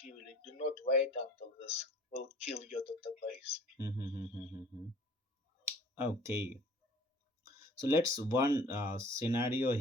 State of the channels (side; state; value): both; normal; correlation 0.49